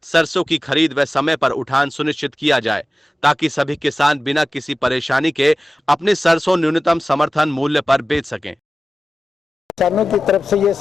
सरसों की खरीद व समय पर उठान सुनिश्चित किया जाए, ताकि सभी किसान बिना किसी परेशानी के अपनी सरसों न्यूनतम समर्थन मूल्य पर बेच सकें। किसानों की तरफ से ये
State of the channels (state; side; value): normal; both; correlation 0.95